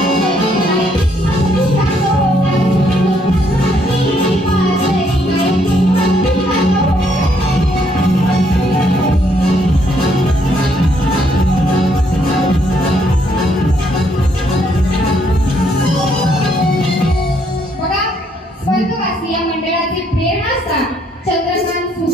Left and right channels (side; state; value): both; normal; correlation 0.70